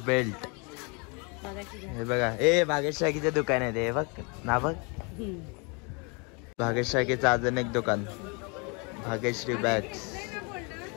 हे बघा ए भाग्यश शाकीचं दुकान आहे ते बघ ना. बघ भाग्यश शाकीचं अजून एक दुकान, भाग्यश्री बॅग्स.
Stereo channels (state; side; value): quieter; right; 32.3 dB